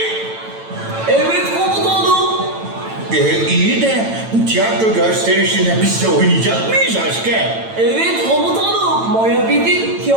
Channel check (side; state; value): left; late; 9.0 ms